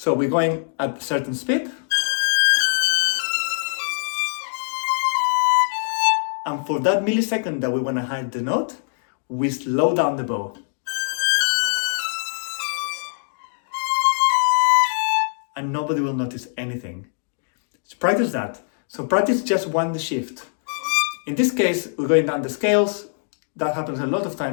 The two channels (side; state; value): right; silent; digital silence